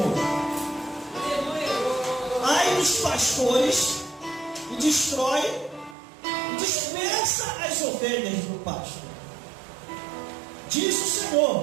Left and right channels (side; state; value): left; drops out; at 6.0 s